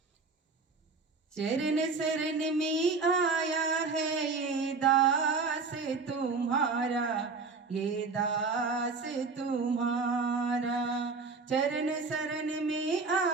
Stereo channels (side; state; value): left; quieter; 4.4 dB